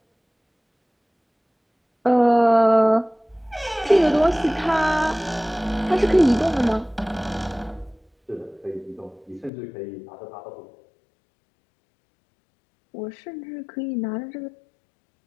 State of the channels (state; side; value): drops out; right; at 9.5 s